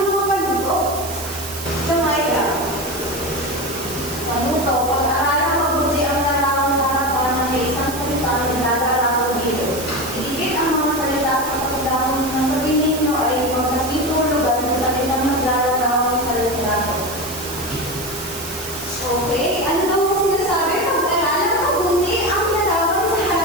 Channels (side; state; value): right; noise; hiss, 10 dB below the sound